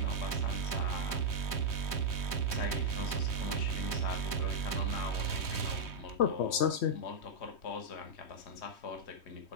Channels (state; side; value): late; right; 3.2 ms